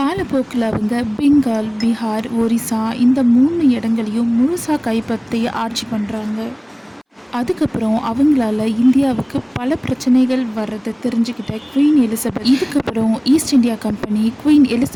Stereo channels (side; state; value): both; identical; correlation 1.00